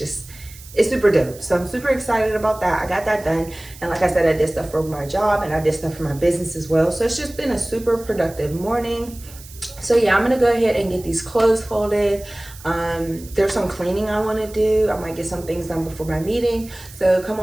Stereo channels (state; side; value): noise; right; hiss, 19 dB below the sound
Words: super dope. So I'm super excited about that. I got that done. And like I said, I did stuff for my job and I did stuff for my business as well. So it's just been a super productive morning. So yeah, I'm gonna go ahead and get these clothes folded. There's some cleaning I want to do. I might get some things done before my meeting. So come